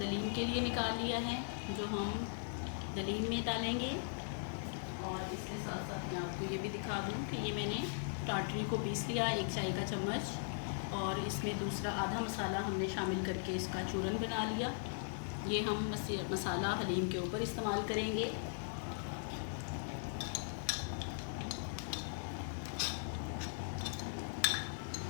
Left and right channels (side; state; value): right; silent; 52 dB below the other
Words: के लिए निकाल लिया है जो हम दलीम में डालेंगे। और इसके साथ साथ मैं आपको ये भी दिखा दूँ कि ये मैंने टाटरी को पीस लिया 1 चाय का चम्मच और इसमें दूसरा आधा मसाला हमने शामिल करके इसका चूरन बना लिया। ये हम मसाला हलीम के ऊपर इस्तेमाल करेंगे।